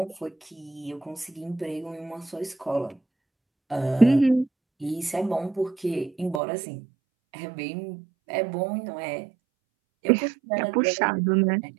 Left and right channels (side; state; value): left; drops out; at 6.4 s